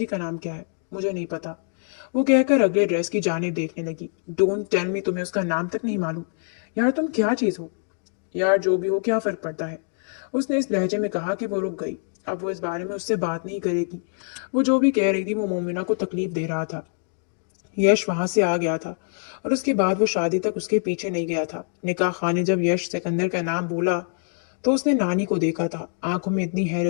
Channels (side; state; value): right; silent; 58 dB below the other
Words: का नाम क्या है? मुझे नहीं पता, वो कहकर अगले ड्रेस की जानिब देखने लगी। डोंट टेल मी तुम्हें उसका नाम तक नहीं मालूम। यार तुम क्या चीज हो? यार जो भी हो क्या फर्क पड़ता है? उसने इस लहजे में कहा कि वो रुक गई। अब वो इस बारे में उससे बात नहीं करेगी। वो जो भी कह रही थी वो मोमिना को तकलीफ दे रहा था। यश वहां से आ गया था और उसके बाद वो शादी तक उसके पीछे नहीं गया था। निकाह खाने जब यश सिकंदर का नाम बोला तो उसने नानी को देखा था। आंखों में इतनी